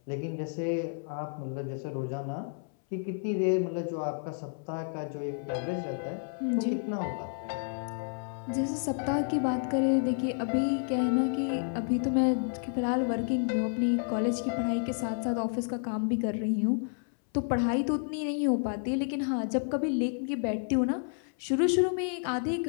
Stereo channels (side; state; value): right; silent; 58 dB below the other